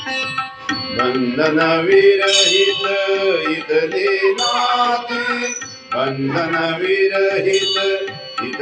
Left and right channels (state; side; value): identical; both; correlation 1.00